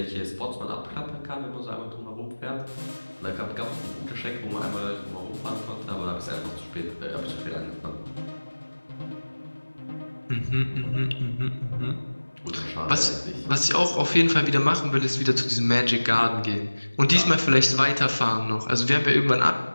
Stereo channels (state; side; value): inverted; both; correlation -1.00